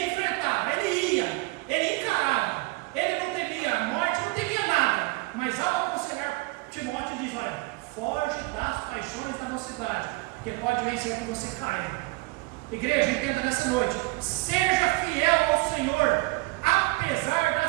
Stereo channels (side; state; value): left; quieter; 24.6 dB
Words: enfrentava, ele ia, ele encarava. Ele não temia a morte, não temia nada. Mas ao aconselhar Timóteo, ele diz: olha, foge das paixões da mocidade, porque pode vencer que você caia. Igreja, entenda nessa noite: seja fiel ao Senhor, apesar